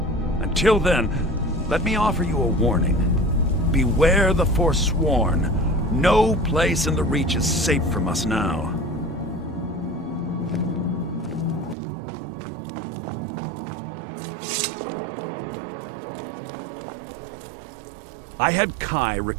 Until then, let me offer you a warning. Beware the Forsworn. No place in the Reach is safe from us now. I had Kai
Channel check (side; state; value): left; drops out; at 11.8 s